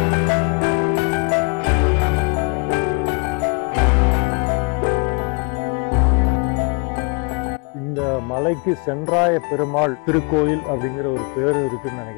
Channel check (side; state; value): right; quieter; 33.0 dB